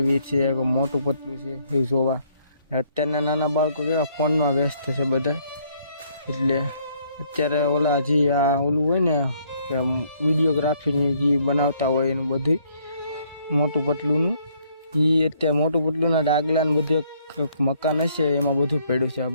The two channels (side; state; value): both; inverted; correlation -0.67